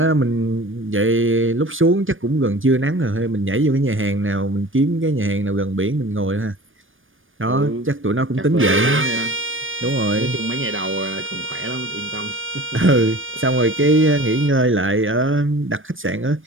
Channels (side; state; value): left; late; 0.58 ms